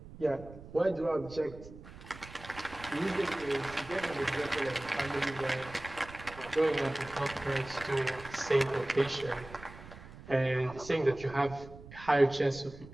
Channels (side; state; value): right; noise; rumble, 16 dB below the sound